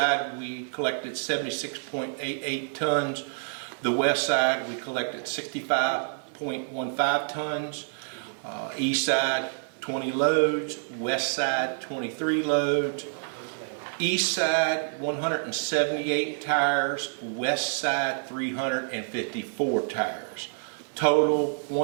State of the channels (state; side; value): silent; left; digital silence